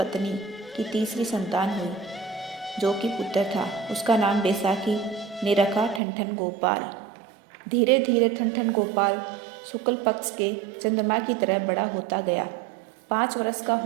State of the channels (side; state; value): left; drops out; at 6.0 s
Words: की तीसरी संतान हुई, जो कि पुत्र था। उसका नाम बैसाखी ने रखा ठनठन गोपाल। धीरे धीरे ठनठन गोपाल शुक्ल पक्ष के चंद्रमा की तरह बड़ा होता गया। 5 वर्ष का